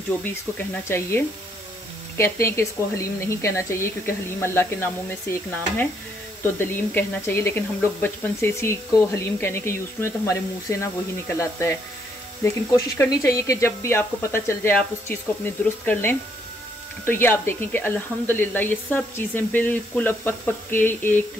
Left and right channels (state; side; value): normal; both; correlation 0.72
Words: जो भी इसको कहना चाहिए। कहते हैं कि इसको हलीम नहीं कहना चाहिए क्योंकि हलीम अल्लाह के नामों में से एक नाम है, तो दलीम कहना चाहिए। लेकिन हम लोग बचपन से इसी को हलीम कहने के यूज़ हुए, तो हमारे मुंह से ना वही निकल आता है। लेकिन कोशिश करनी चाहिए कि जब भी आपको पता चल जाए आप उस चीज़ को अपनी दुरुस्त कर लें। तो ये आप देखें कि अल्हम्दुलिल्लाह ये सब चीज़ें बिल्कुल अब पक पक के